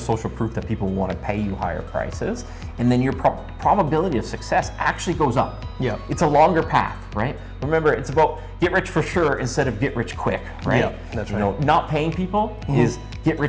proof that people want to pay you higher prices, and then your probability of success actually goes up. Yeah. It's a longer path, right? Remember, it's about get rich for sure instead of get rich quick, right? Yeah, that's you right. know, not paying people is get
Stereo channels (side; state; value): both; identical; correlation 1.00